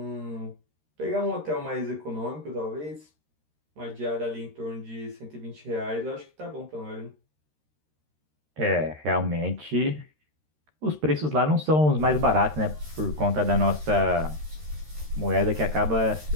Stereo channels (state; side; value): late; left; 13 ms